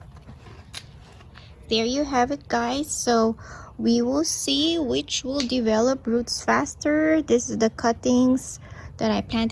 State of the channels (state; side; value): identical; both; correlation 1.00